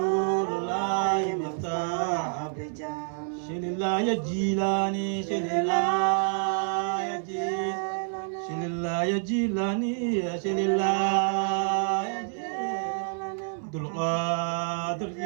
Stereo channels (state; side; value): silent; left; 59 dB below the other